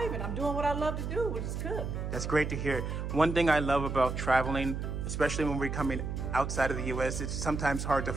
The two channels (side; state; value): right; noise; hum, 4 dB below the sound